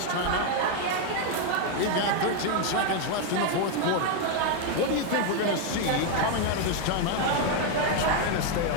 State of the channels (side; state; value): both; different; correlation 0.01